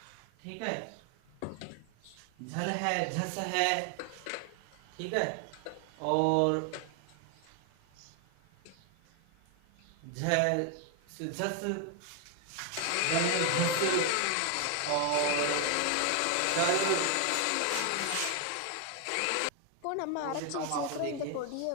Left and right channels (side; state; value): both; different; correlation 0.01